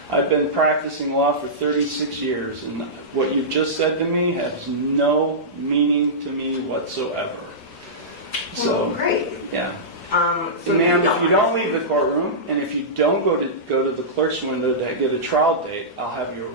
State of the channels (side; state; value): both; normal; correlation -0.16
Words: I've been practicing law for 36 years, and what you've just said to me has no meaning to me whatsoever. So, great. Yeah. So ma'am, if you don't leave the courtroom, and if you don't go to the clerk's window to get a trial date, I'll have you